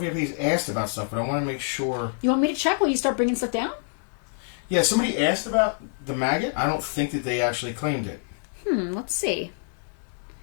asked about stuff, but I want to make sure. You want me to check while you start bringing stuff down? Yeah, somebody asked about the maggot. I don't think that they actually claimed it. Let's see.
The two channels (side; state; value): right; silent; digital silence